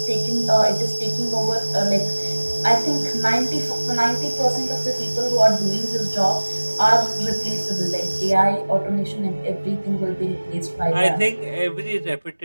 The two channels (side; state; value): both; inverted; correlation -1.00